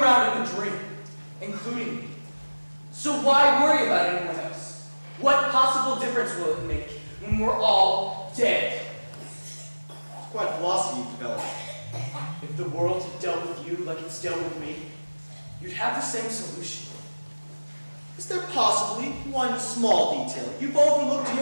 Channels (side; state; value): both; inverted; correlation -1.00